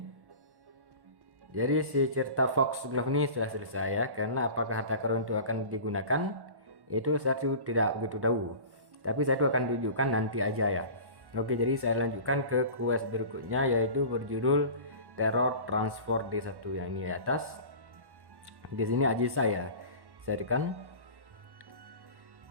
Jadi si cerita Foxglove ini sudah selesai ya, karena apakah harta karun itu akan digunakan itu saya tidak begitu tahu, tapi saya itu akan tunjukkan nanti aja ya. Oke, jadi saya lanjutkan ke quest berikutnya, yaitu berjudul Terror Transport D1 yang ini di atas. Di sini aja saya tekan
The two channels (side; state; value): left; late; 1.1 ms